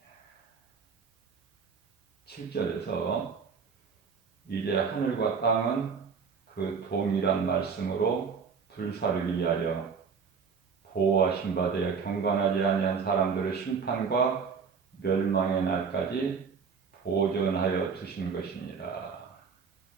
7절에서 이제 하늘과 땅은 그 동일한 말씀으로 불사르기 위하여 보호하신 바 되어 경건하지 아니한 사람들의 심판과 멸망의 날까지 보존하여 두신 것이니라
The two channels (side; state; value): left; quieter; 5.8 dB